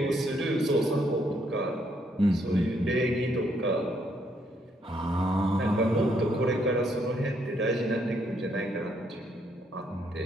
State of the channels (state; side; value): normal; both; correlation 0.73